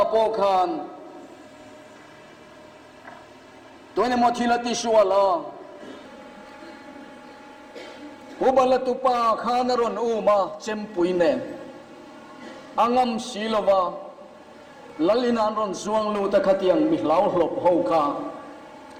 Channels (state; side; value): identical; both; correlation 1.00